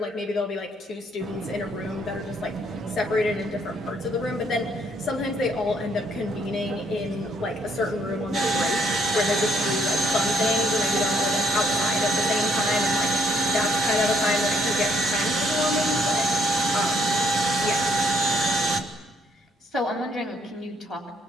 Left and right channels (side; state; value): both; normal; correlation 0.70